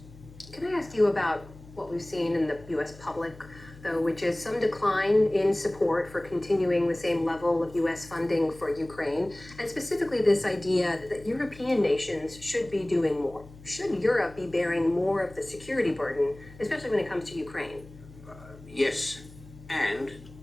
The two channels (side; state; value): left; noise; hum, 20 dB below the sound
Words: Can I ask you about what we've seen in the U.S. public though, which is some decline in support for continuing the same level of U.S. funding for Ukraine, and specifically this idea that European nations should be doing more. Should Europe be bearing more of the security burden, especially when it comes to Ukraine? Yes, and